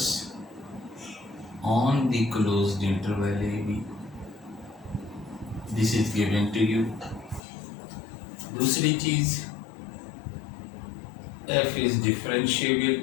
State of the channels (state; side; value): drops out; right; at 7.4 s